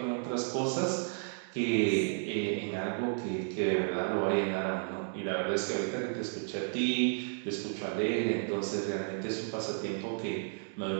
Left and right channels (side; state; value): left; silent; 56 dB below the other